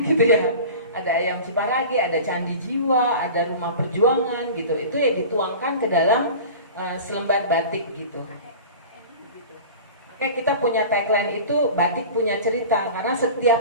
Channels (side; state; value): both; inverted; correlation -0.37